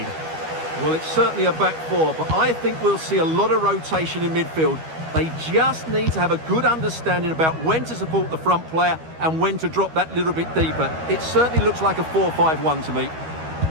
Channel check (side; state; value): left; late; 13 ms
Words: Well, it's certainly a back four, but I think we'll see a lot of rotation in midfield. They just need to have a good understanding about when to support the front player and when to drop that little bit deeper. It certainly looks like a 4-5-1 to me.